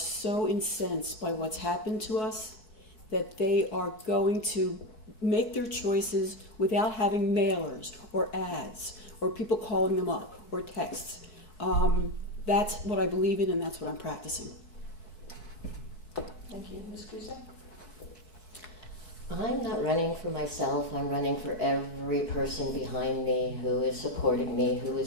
incensed by what's happened to us that they are going to make their choices without having mailers or ads or people calling them up or texts. That's what I believe in, and that's what I'm practicing. Thank you. Ms. Cusack? I'm not running for myself. I'm running for every person behind me who is supporting me, who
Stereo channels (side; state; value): right; late; 4.7 ms